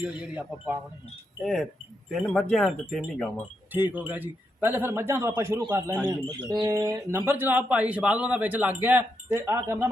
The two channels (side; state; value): both; normal; correlation 0.82